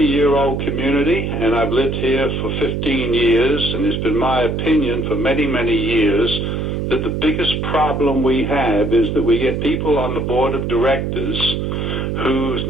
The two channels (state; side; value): noise; right; hum, 2 dB below the sound